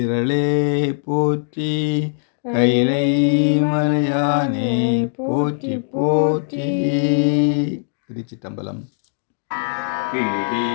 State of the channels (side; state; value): right; silent; digital silence